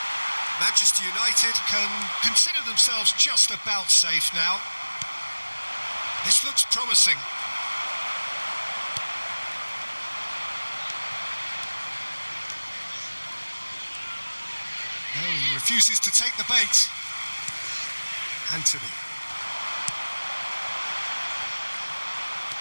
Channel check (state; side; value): inverted; both; correlation -1.00